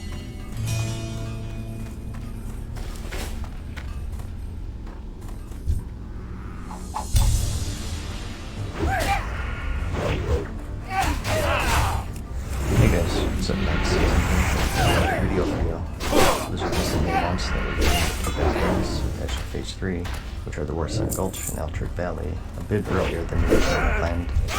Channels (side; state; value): both; identical; correlation 1.00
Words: What's up next? Video for you. Blizzard recently announced that we're doing release attached to Phase 3, which are the Warsaw Gulch and Altric Valley, a bit earlier than originally planned.